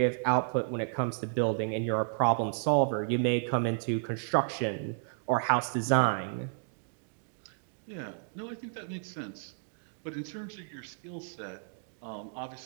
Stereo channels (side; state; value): left; silent; 56 dB below the other